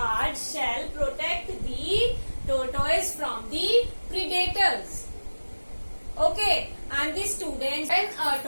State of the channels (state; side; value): inverted; both; correlation -1.00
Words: shell protects the tortoise from the predators. Okay, and the students, when a